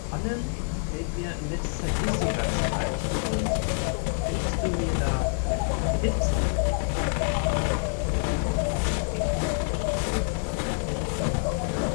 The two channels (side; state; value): right; silent; 58 dB below the other